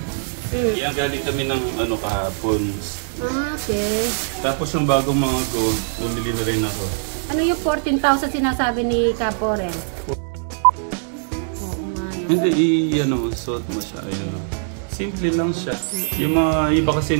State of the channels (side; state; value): left; silent; digital silence